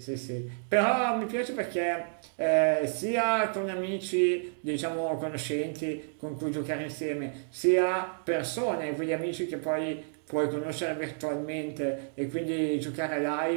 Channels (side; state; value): left; silent; digital silence